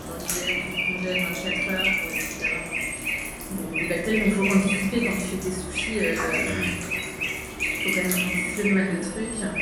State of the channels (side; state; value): both; identical; correlation 1.00